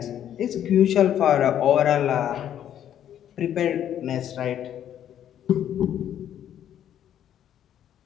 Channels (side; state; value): right; quieter; 10.4 dB